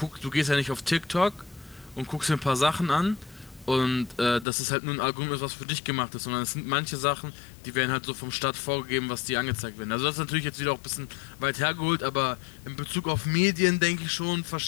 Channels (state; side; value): drops out; right; at 4.5 s